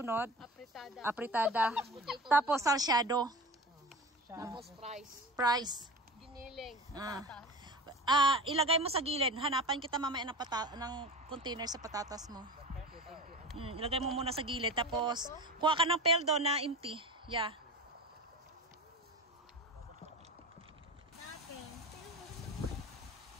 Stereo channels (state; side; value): normal; both; correlation 0.33